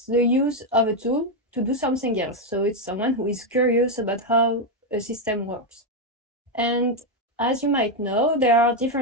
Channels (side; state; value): both; normal; correlation 0.04